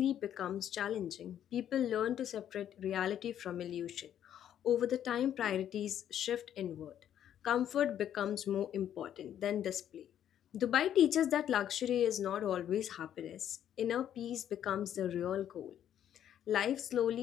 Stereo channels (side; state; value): right; quieter; 10.3 dB